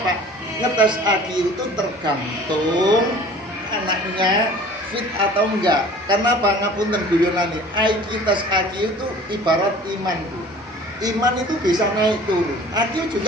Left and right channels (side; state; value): both; normal; correlation 0.47